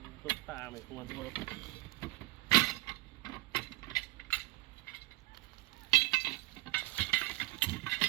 ta mày không ăn thua đâu.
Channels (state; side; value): quieter; left; 20.8 dB